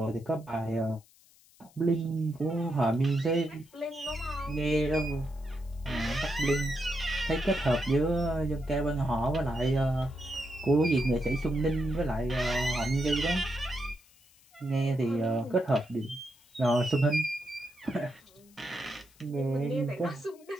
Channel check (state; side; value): noise; left; hiss, 28 dB below the sound